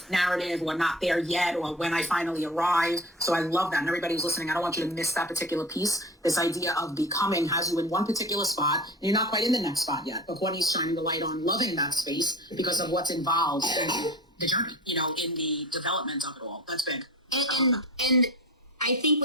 narrative or not there yet or when I finally arrive. So I love that. And everybody who's listening, I don't want you to miss that particular piece. This idea of becoming has you in one particular spot and you're not quite in the next spot yet. But Courtney's shining the light on loving that space because of what's involved in the journey, in the development of it all. That's big. And I think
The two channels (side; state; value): both; normal; correlation 0.35